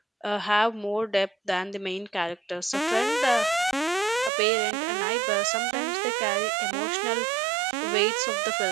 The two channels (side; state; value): left; drops out; at 4.3 s